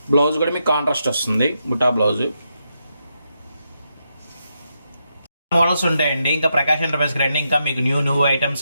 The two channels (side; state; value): both; inverted; correlation -0.83